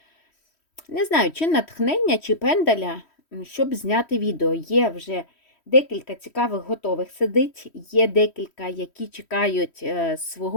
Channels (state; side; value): late; right; 3.1 ms